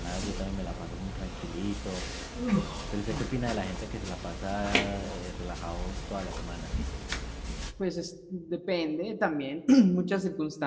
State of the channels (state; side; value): identical; both; correlation 1.00